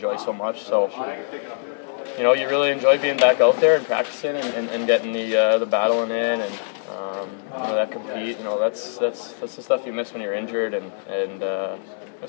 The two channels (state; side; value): silent; right; digital silence